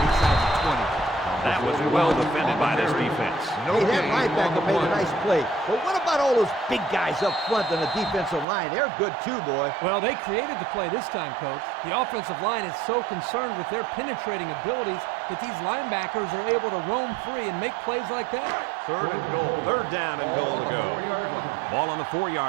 inside the 20. That was well defended by this defense. Hey, that linebacker made a nice play. But what about all those big guys up front on the defensive line? They're good too, boy. Well, they created the play this time, Coach. The offensive line is so concerned with their penetrating abilities that these linebackers are able to roam free and make plays like that. 3rd and goal. 3rd down and goal to go. Ball on the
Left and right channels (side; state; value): left; drops out; at 8.5 s